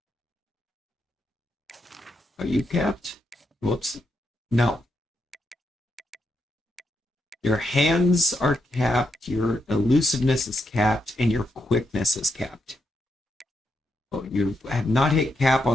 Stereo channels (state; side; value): normal; both; correlation 0.82